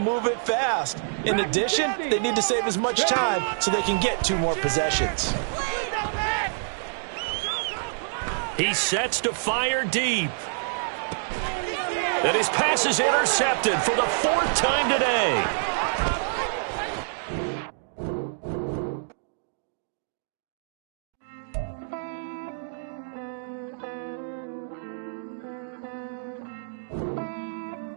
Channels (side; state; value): left; silent; digital silence